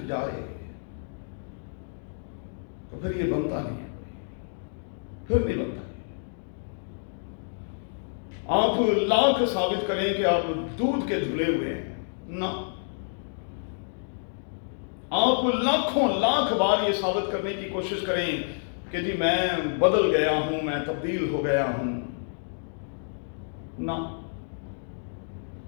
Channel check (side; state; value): right; silent; digital silence